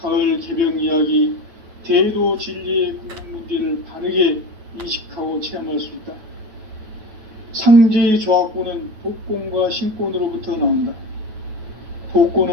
가을 개벽 이야기, 대도 진리의 궁극 문제를 바르게 인식하고 체험할 수 있다. 상제의 조화권은 독권과 신권으로부터 나온다.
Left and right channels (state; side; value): late; left; 9.2 ms